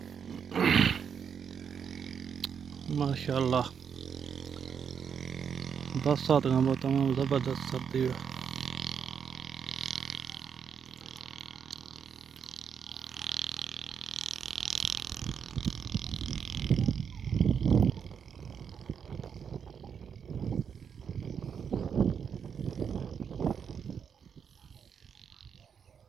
माशाल्लाह। बरसात का तमाम ज़बरदस्त सर्दी है।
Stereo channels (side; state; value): left; quieter; 7.2 dB